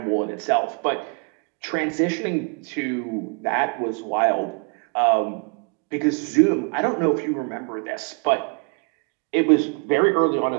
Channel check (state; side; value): quieter; left; 35.5 dB